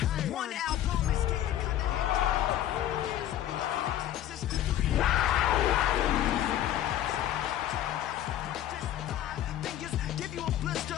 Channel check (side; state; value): right; quieter; 12.0 dB